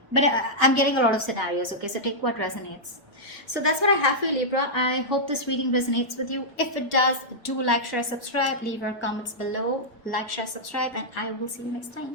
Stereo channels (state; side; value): normal; both; correlation -0.09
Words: But I'm getting a lot of scenarios, okay, so take what resonates. So that's what I have for you, Libra. I hope this reading resonates with you. If it does, do like, share, subscribe, leave your comments below, like, share, subscribe, and I will see you next